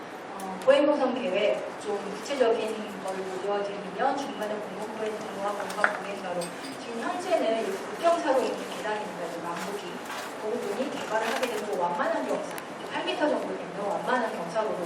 보행노선 계획 좀 구체적인 걸 보여드리면 중간에 공공보행 통로와 공간보행가로 지금 현재는 국경사로 있는 계단입니다. 남북이 그 부분이 개발을 하게 되면 완만한 경사 8m 정도 되면 완만한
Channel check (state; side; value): identical; both; correlation 1.00